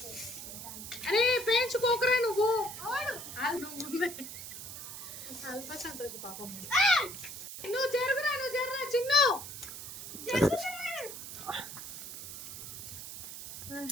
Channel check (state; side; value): noise; right; hiss, 10 dB below the sound